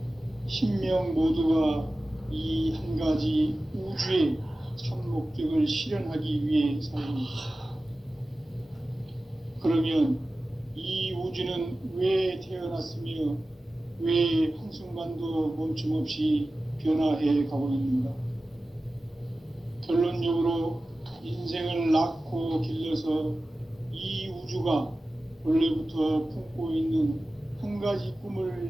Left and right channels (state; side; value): normal; both; correlation 0.96